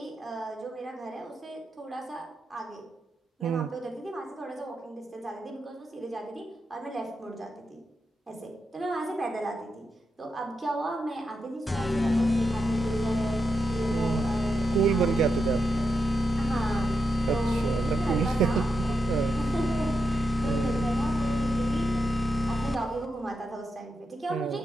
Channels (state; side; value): normal; both; correlation 0.85